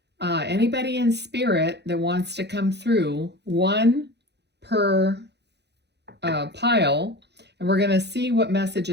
anybody in spirit that wants to come through, one per pile, and we're going to see what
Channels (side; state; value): left; late; 0.49 ms